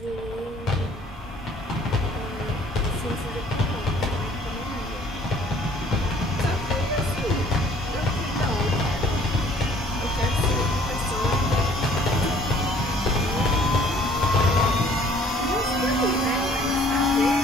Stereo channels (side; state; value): both; normal; correlation 0.56